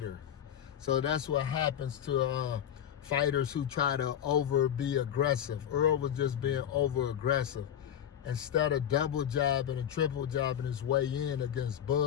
So that's what happens to fighters who try to be aggressive. Earl was just being over aggressive. Instead of double jabbing and triple jabbing his way in against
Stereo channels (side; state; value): right; quieter; 9.8 dB